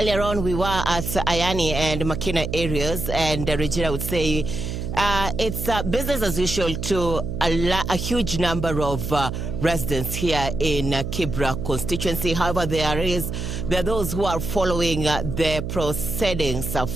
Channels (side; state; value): right; noise; hum, 5 dB below the sound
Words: on, we were at Ayani and Makina areas, and Regina would say it's business as usual to a huge number of residents here in Kibra constituency. However, there are those who are following the proceedings